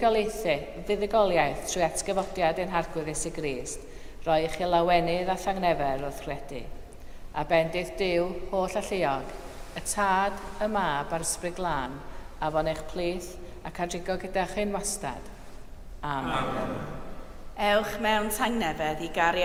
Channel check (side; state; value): both; identical; correlation 1.00